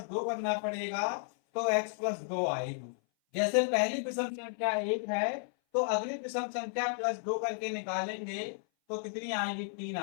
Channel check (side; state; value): right; silent; 56 dB below the other